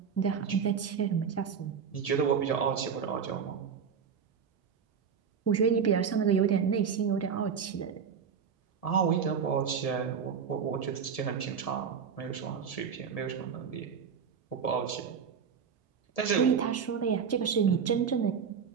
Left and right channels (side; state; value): left; quieter; 6.8 dB